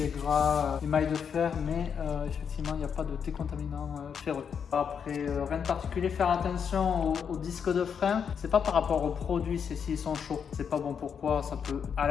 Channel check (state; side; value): quieter; right; 7.1 dB